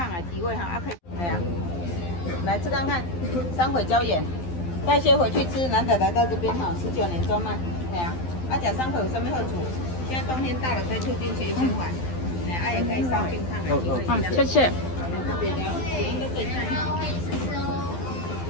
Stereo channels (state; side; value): late; right; 12 ms